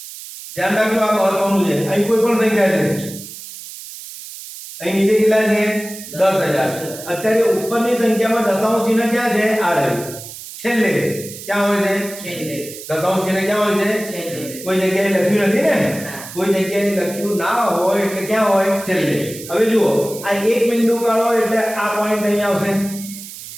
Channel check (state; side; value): noise; right; hiss, 13 dB below the sound